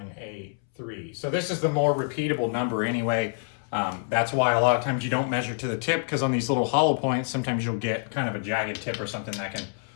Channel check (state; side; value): silent; right; 60 dB below the other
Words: So this is the more repeatable number anyway. That's why a lot of times you don't measure to the tip, because on these little hollow points, sometimes you'll get kind of a jagged tip or something that can